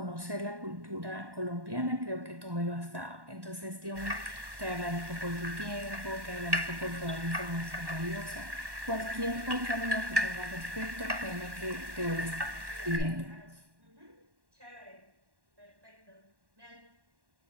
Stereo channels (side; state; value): left; late; 1.1 ms